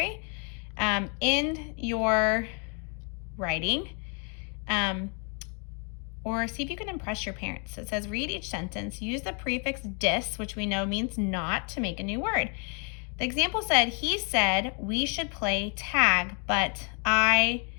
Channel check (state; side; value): quieter; right; 37.7 dB